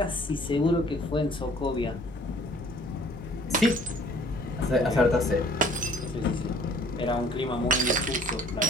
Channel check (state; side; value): normal; both; correlation 0.54